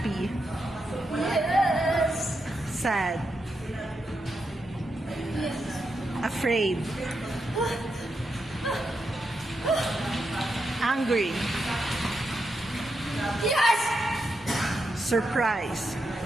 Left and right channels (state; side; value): normal; both; correlation 0.85